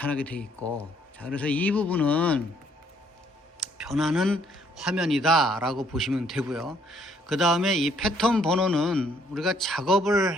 돼 있고 자 그래서 이 부분은 변하는 화면이다 라고 보시면 되고요. 그 다음에 이 패턴 번호는 우리가 작업을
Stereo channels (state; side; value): normal; both; correlation 0.66